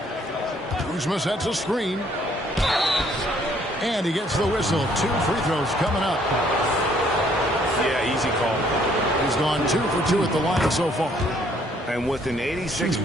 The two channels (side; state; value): both; normal; correlation 0.64